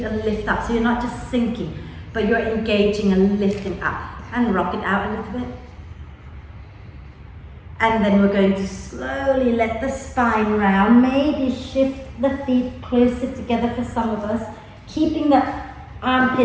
and lift up. So you're not just sinking, but you're engaging and lifting up. And rock it out a little bit. And then we're going to slowly let the spine round, maybe shift the feet closer together for some of us, keeping the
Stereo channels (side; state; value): both; identical; correlation 1.00